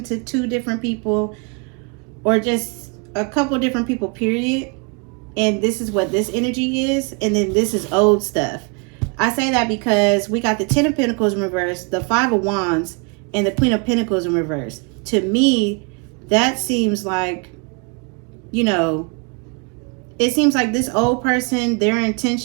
to two different people or just a couple different people, period. And this is what this energy is. And then this is old stuff. I say that because we got the Ten of Pentacles in reverse, the Five of Wands, and the Queen of Pentacles in reverse. To me, that seems like, it seems like this old person, their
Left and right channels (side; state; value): left; quieter; 32.8 dB